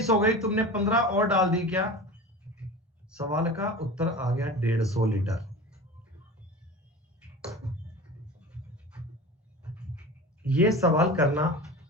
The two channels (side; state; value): both; normal; correlation 0.34